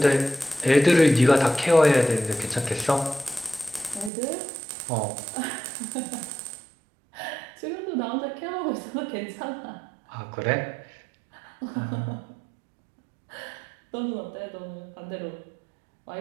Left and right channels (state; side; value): drops out; left; at 4.1 s